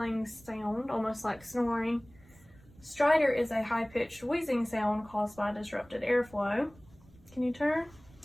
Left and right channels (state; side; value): noise; right; rumble, 25 dB below the sound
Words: sound, almost like snoring. Stridor is a high-pitched wheezing sound caused by disrupted airflow. Can you turn?